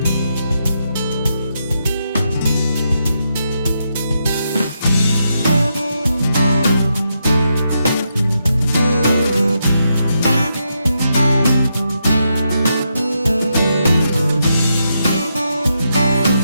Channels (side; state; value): both; inverted; correlation -0.82